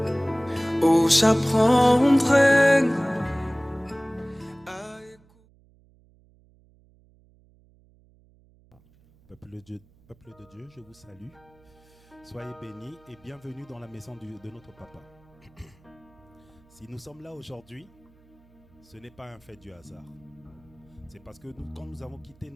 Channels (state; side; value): noise; right; hum, 30 dB below the sound